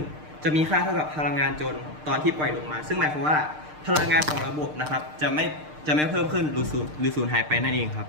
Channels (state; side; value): late; left; 6.6 ms